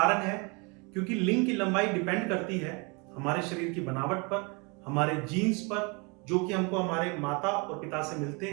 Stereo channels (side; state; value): left; quieter; 30.7 dB